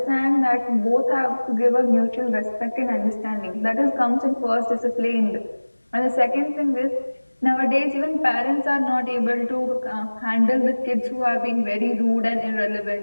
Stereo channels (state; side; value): inverted; both; correlation -1.00